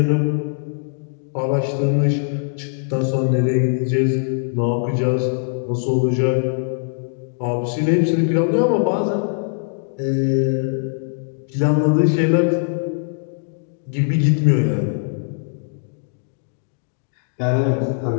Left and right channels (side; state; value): right; silent; digital silence